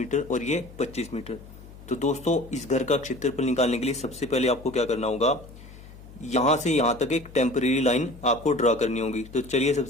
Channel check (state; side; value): noise; left; hum, 18 dB below the sound